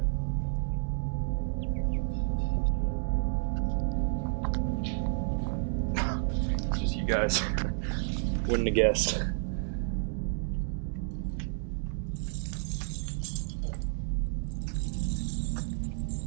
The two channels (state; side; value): silent; left; digital silence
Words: It's just you guys. Wouldn't have guessed.